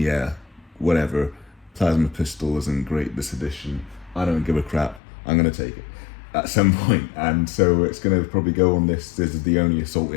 whatever. Plasma pistol isn't great this edition. I don't give a crap. I'm going to take it at some point. And so it's going to probably go on this. This is the only assault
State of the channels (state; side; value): drops out; right; at 5.0 s